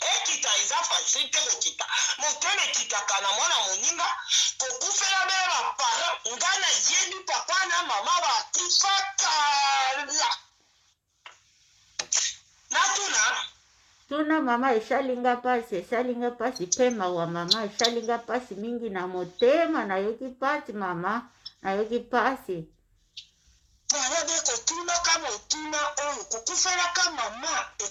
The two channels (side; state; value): both; identical; correlation 1.00